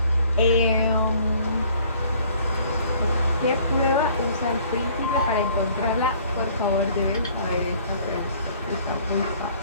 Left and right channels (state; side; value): inverted; both; correlation -0.56